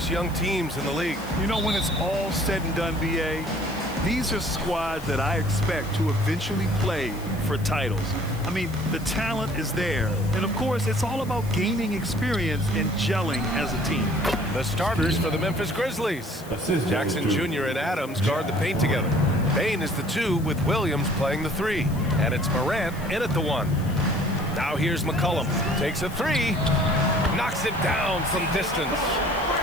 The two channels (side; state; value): left; noise; hiss, 19 dB below the sound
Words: young teams in the league. You know, when it's all said and done, BA, these are squads that I expect to eventually play for titles. I mean, the talent is there. And of course, it's all about gaining experience and gelling as a team. The starters for the Memphis Grizzlies. Jackson Jr. and Adams guard the paint together. Bain is the 2 with Williams playing the 3. And it's Morant in at the 1. Now here's McCollum. Takes a 3. Knocks it down from distance.